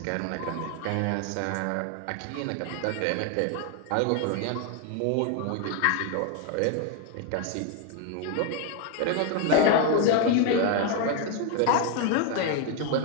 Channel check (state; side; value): different; both; correlation 0.01